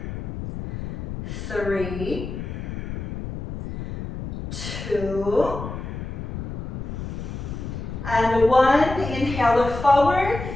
3, 2, and 1. Inhale, look forward,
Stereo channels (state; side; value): noise; left; rumble, 7 dB below the sound